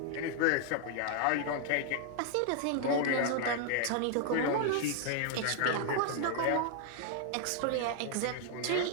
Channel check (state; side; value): different; both; correlation 0.00